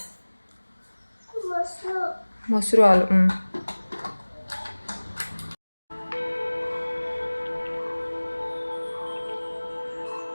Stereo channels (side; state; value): both; inverted; correlation -1.00